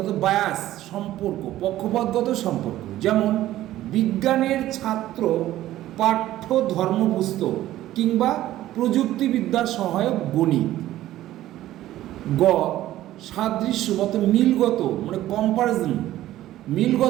বায়াস সম্পর্ক, পক্ষপাতগত সম্পর্ক, যেমন বিজ্ঞানের ছাত্র পাঠ্য ধর্মপুস্তক কিংবা প্রযুক্তিবিদ্যার সহায়ক গণিত। গ সাদৃশ্যগত মিলগত মানে কম্পারিজন,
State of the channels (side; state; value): left; quieter; 14.3 dB